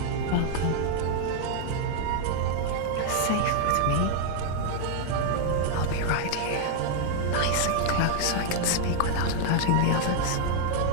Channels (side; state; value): both; different; correlation 0.00